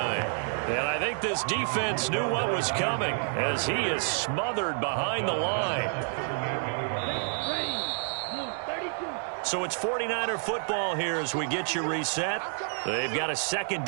And I think this defense knew what was coming as he is smothered behind the line. So it's 49er football here as we get you reset. They've got a second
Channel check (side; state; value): left; silent; 59 dB below the other